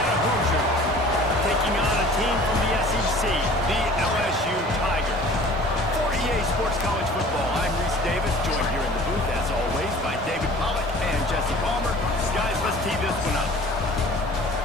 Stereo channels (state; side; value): normal; both; correlation 0.46